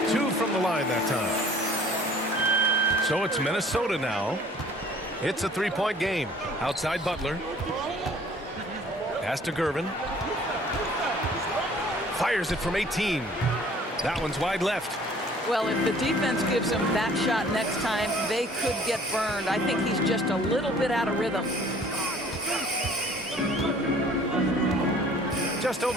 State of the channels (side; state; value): both; normal; correlation 0.53